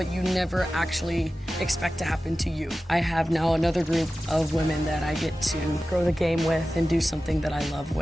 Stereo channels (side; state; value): both; normal; correlation 0.95